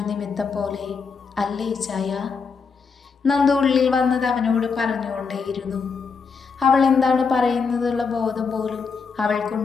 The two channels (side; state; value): right; quieter; 5.3 dB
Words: നിമിത്തം പോലെ അല്ലേ ഇച്ചായ? നന്ദു ഉള്ളിൽ വന്നത് അവനോട് പറഞ്ഞുകൊണ്ടേയിരുന്നു. അവൾ എന്താണ് പറയുന്നതെന്നുള്ള ബോധം പോലും